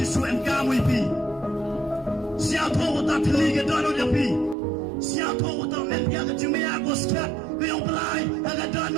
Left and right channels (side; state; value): left; drops out; at 4.5 s